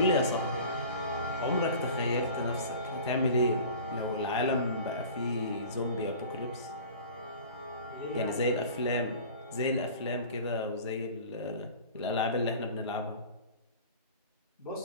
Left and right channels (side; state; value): both; inverted; correlation -0.41